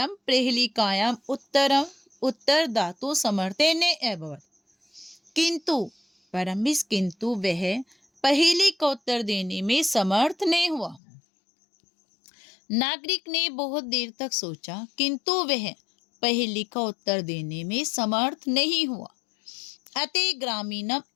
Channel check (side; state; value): right; drops out; at 11.0 s